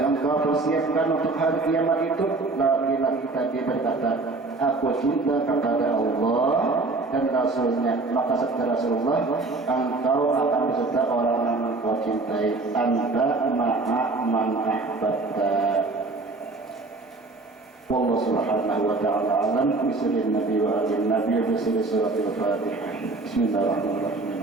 engkau persiapkan untuk hari kiamat itu?" Laki-laki tadi berkata, "Aku cinta kepada Allah dan Rasulnya." Maka sabda Rasulullah, "Engkau akan beserta orang yang engkau cintai. Anta ma'a man ahbabta." والله سبحانه وتعالى أعلم. بسم النبي وآل النبي وبسم سورة الفاتحة. بسم الله الرحمن الرحيم.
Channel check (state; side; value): quieter; left; 3.5 dB